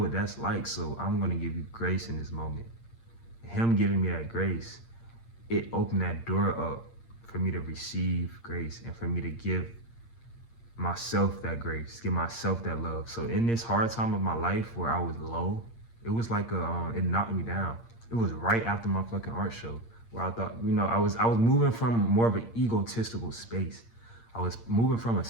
that's like, so I'm gonna give you grace in this moment. Him giving me that grace, it opened that door up for me to receive grace and for me to give myself that grace, give myself that love. So in this hard time of my life where I was low, it was like it knocked me down. It was right after my fucking art show where I thought, I was moving from more of an egotistical space. I was moving from a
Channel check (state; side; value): late; right; 8.7 ms